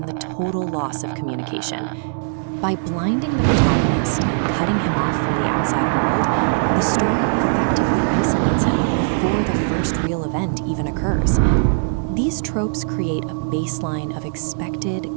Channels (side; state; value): left; silent; digital silence